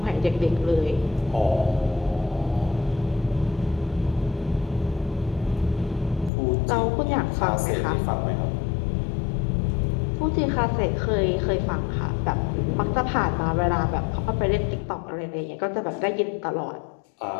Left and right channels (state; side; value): drops out; right; at 6.3 s